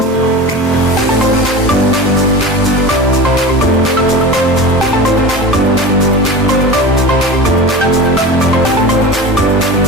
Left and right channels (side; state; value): both; normal; correlation 0.32